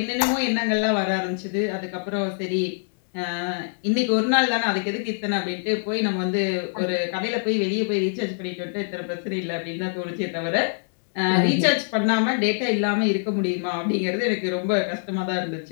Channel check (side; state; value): right; silent; digital silence